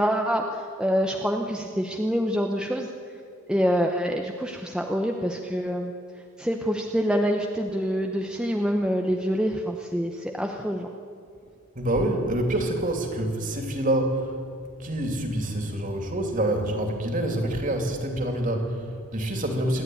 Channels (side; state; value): both; normal; correlation 0.68